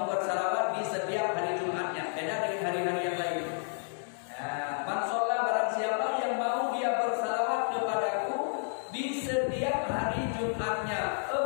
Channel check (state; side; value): silent; right; digital silence